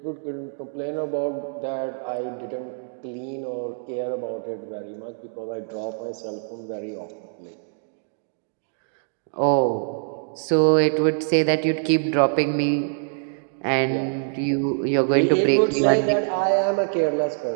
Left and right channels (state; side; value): silent; left; digital silence